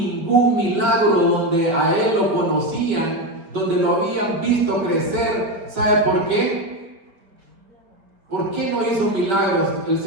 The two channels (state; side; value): late; left; 4.5 ms